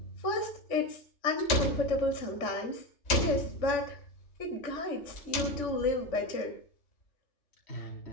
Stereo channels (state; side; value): late; right; 3.5 ms